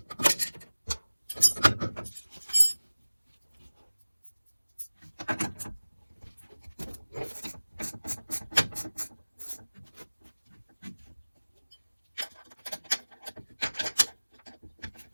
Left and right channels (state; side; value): inverted; both; correlation -1.00